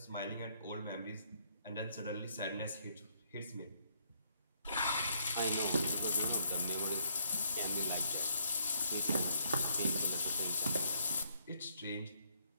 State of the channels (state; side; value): inverted; both; correlation -0.70